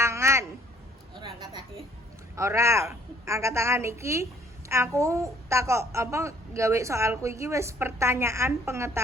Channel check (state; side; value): normal; both; correlation 0.60